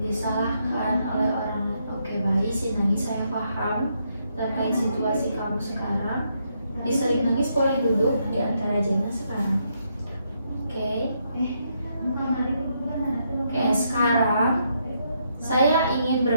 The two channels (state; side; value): inverted; both; correlation -0.77